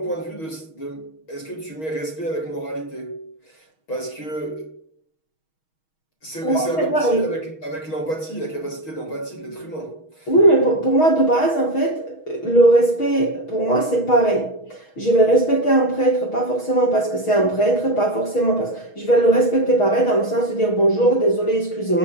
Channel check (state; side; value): late; right; 6.3 ms